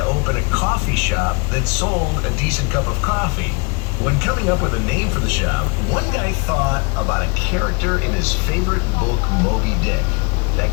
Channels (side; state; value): right; quieter; 29.3 dB